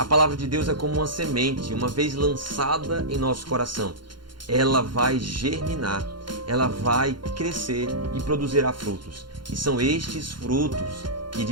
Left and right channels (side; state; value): left; late; 0.72 ms